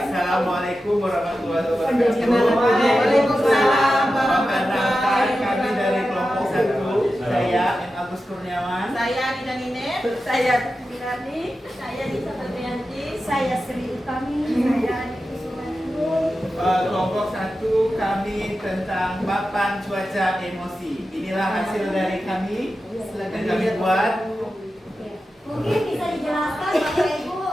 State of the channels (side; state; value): both; normal; correlation 0.92